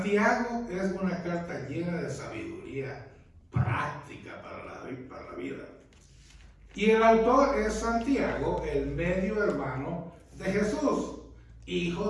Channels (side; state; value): both; identical; correlation 1.00